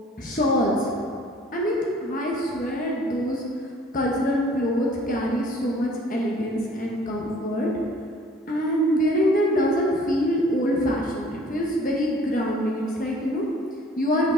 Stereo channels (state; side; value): normal; both; correlation 0.53